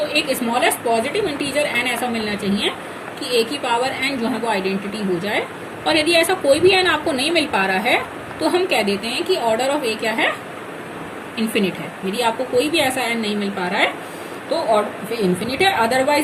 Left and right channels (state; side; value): identical; both; correlation 1.00